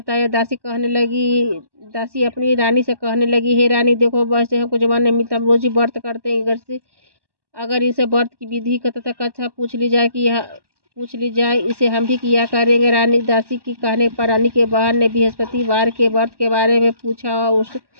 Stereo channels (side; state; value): left; late; 1.1 ms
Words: दासी अपनी रानी से कहने लगी, हे रानी, देखो, वैसे हमको जवान नहीं मिलता, हम रोज ही व्रत करते हैं। अगर इसे व्रत की विधि का तथा कथा पूछ ली जाए, इसे हम भी किया करेंगे। दासी की कहने पर रानी के बहन ने बृहस्पतिवार के व्रत के बारे में पूछा।